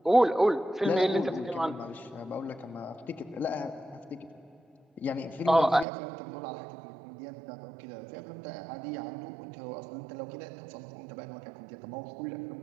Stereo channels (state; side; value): drops out; left; at 5.9 s